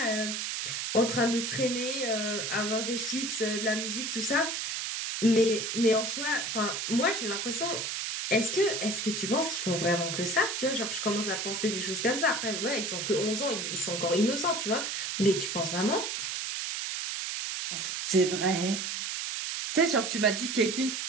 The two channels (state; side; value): noise; right; hiss, 3 dB below the sound